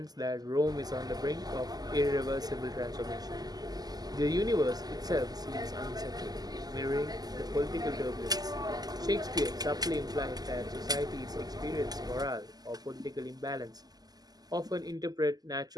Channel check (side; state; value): left; late; 0.19 ms